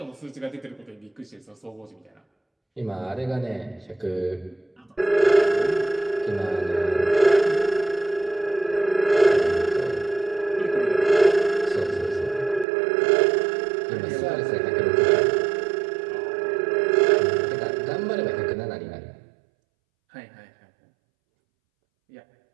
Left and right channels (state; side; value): drops out; left; at 12.7 s